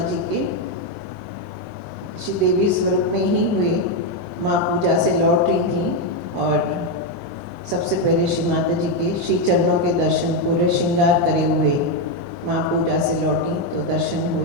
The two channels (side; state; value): both; normal; correlation 0.04